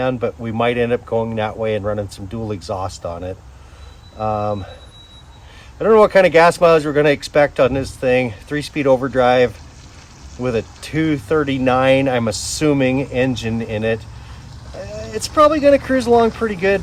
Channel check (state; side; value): identical; both; correlation 1.00